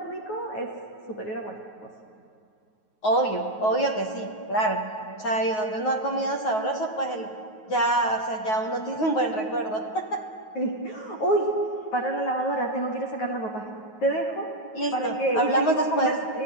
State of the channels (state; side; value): late; right; 9.3 ms